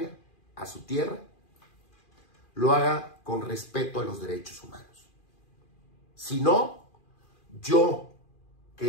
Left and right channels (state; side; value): late; right; 2.4 ms